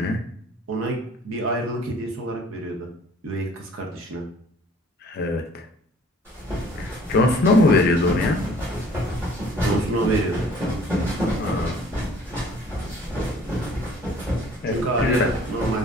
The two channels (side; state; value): both; normal; correlation 0.54